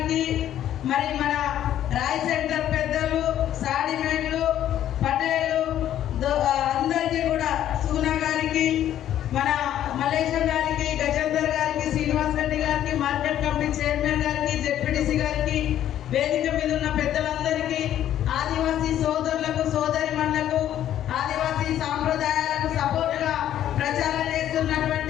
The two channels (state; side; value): quieter; right; 11.4 dB